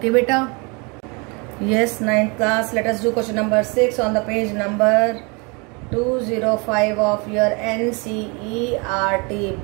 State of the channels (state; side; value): quieter; left; 30.4 dB